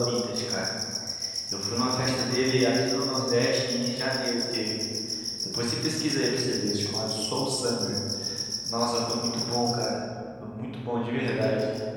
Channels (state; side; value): identical; both; correlation 1.00